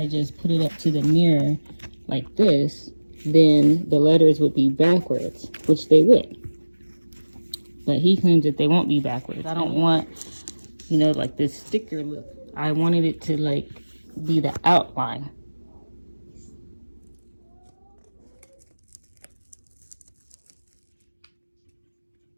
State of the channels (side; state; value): both; inverted; correlation -1.00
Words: just put it up to the mirror like this, then the letters would be backwards, which they would. But he claims that they won't be backwards. I don't want, like this sticker look. I wanted it to like be the outline.